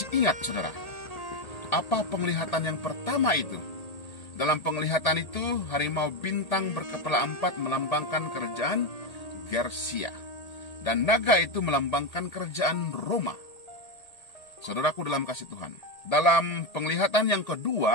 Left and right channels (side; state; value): right; late; 1.8 ms